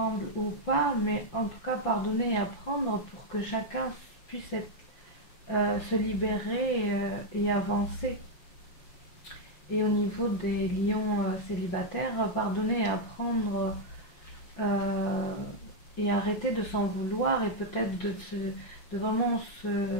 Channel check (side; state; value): right; late; 6.0 ms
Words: ou pas, mais en tout cas pardonner et apprendre pour que chacun puisse se libérer et avancer. Et au niveau des lions célibataires, pardonner et apprendre et arrêter de s'en vouloir et peut-être de vraiment